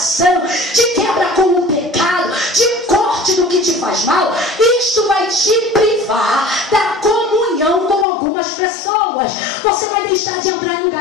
de quebra com o pecado, de corte do que te faz mal, isto vai te privar da comunhão com algumas pessoas. Você vai deixar de entrar em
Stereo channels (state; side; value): drops out; right; at 8.1 s